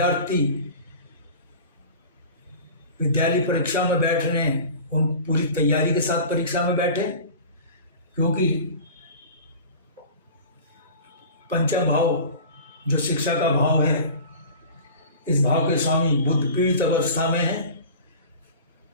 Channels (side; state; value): both; inverted; correlation -0.39